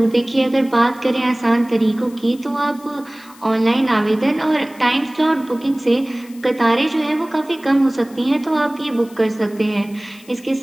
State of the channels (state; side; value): noise; left; hiss, 24 dB below the sound